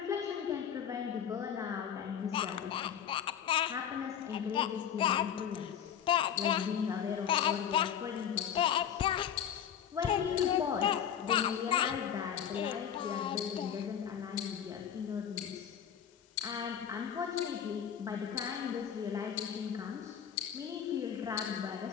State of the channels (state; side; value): quieter; right; 8.8 dB